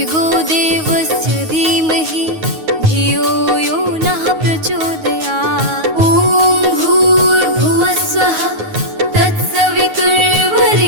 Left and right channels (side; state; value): left; late; 9.4 ms